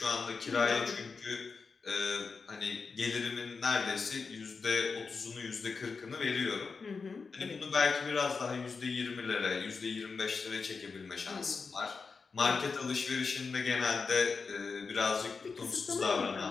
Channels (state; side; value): quieter; right; 4.8 dB